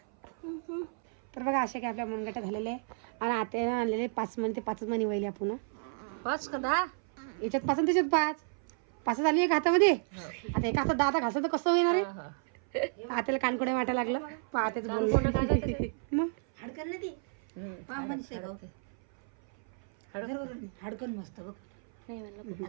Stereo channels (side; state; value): left; silent; 57 dB below the other